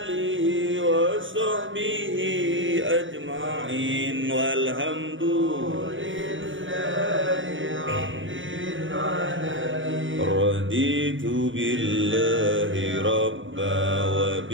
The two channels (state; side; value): late; left; 0.56 ms